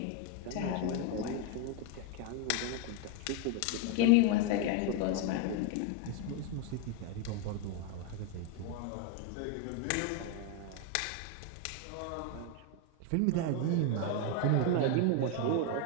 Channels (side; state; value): both; different; correlation 0.01